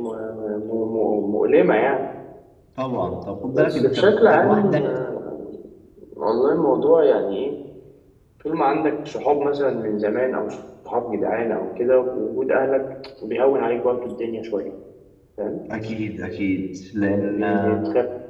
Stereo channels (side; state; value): both; identical; correlation 1.00